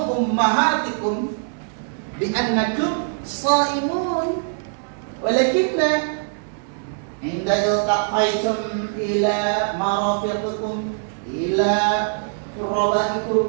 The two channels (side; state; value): left; silent; digital silence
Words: bi annakum shaimun, walakinna inda iltaqaitum ila marafiqikum, ila